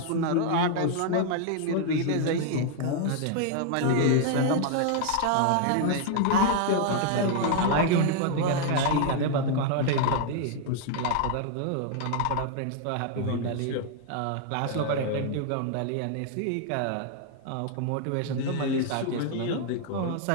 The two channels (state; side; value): different; both; correlation 0.00